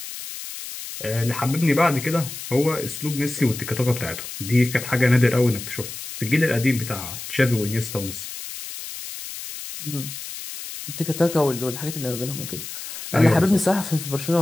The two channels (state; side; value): noise; left; hiss, 10 dB below the sound